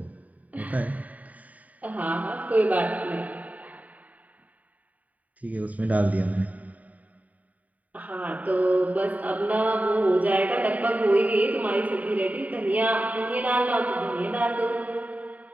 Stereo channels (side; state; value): left; late; 0.071 ms